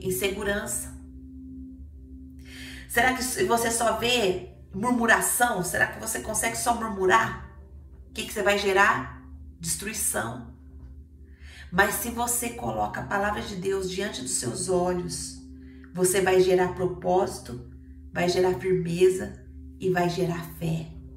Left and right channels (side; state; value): both; identical; correlation 1.00